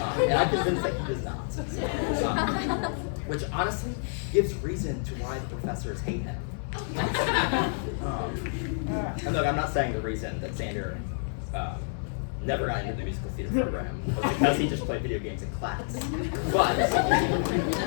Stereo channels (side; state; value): right; silent; digital silence